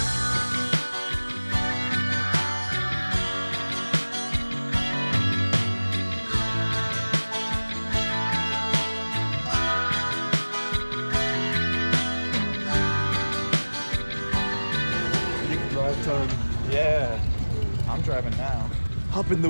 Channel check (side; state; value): both; inverted; correlation -1.00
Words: Drive time. Yeah, I'm driving now. Hop in the